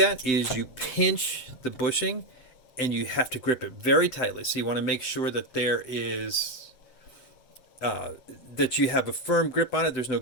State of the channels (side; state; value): right; late; 7.8 ms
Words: is you pinch the bushing and you have to grip it very tightly. So you want to make sure that there is that you have a firm grip on it, there's no